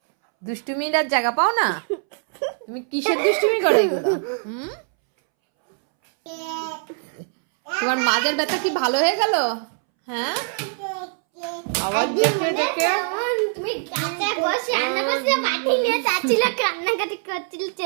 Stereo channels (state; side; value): silent; left; 64 dB below the other